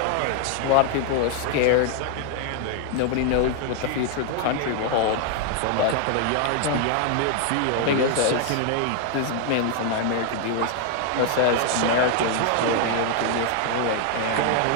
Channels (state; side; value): different; both; correlation 0.00